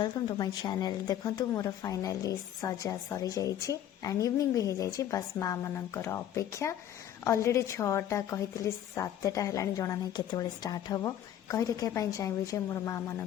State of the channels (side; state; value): right; quieter; 10.9 dB